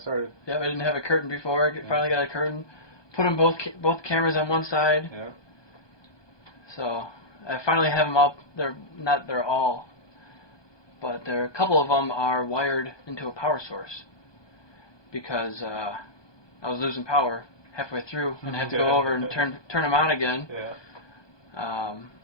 started. Yeah, I didn't have a curtain before. Finally got a curtain. Put them both cameras on one side. Yeah. So I finally have them up. They're all, but a couple of them are wired into a power source because I was losing power halfway through and I had to go over and turn them on again. Yeah.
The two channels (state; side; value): late; right; 1.2 ms